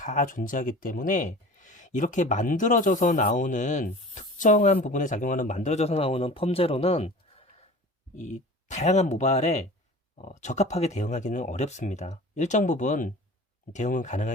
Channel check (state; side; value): normal; both; correlation 0.40